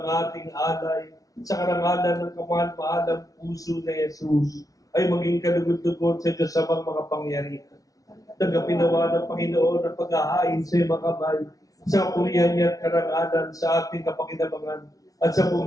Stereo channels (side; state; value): right; late; 0.17 ms